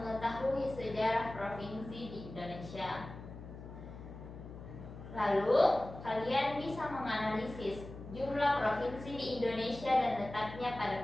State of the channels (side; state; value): left; noise; hum, 13 dB below the sound